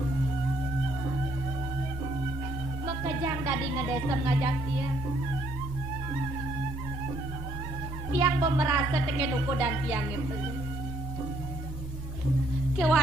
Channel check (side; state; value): both; normal; correlation 0.75